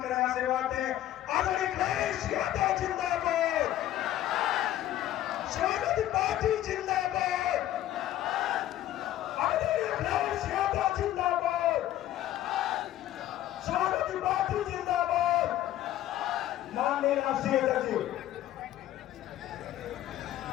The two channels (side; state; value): right; quieter; 13.2 dB